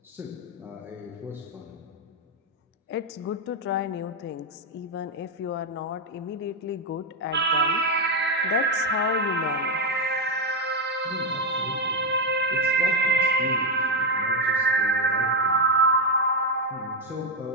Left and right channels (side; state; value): both; normal; correlation 0.05